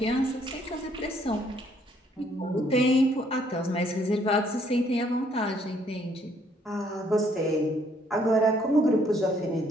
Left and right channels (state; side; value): normal; both; correlation 0.66